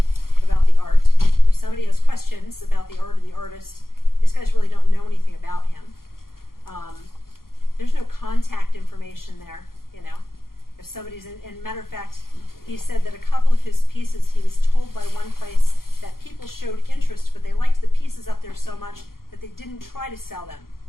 about the art. If somebody has questions about the art or the artist, these guys really don't know anything about him. There's no contact information there, you know. If somebody's in matter of fact, he said that a couple of his pieces, he was told by one place that people showed interest, but they liked the pieces up there so much that they didn't try to sell them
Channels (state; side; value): late; right; 0.92 ms